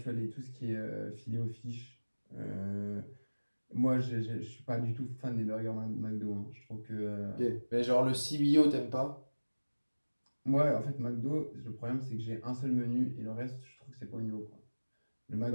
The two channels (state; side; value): inverted; both; correlation -1.00